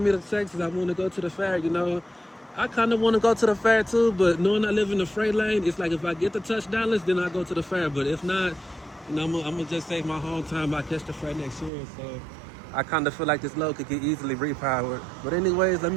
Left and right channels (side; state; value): left; drops out; at 11.7 s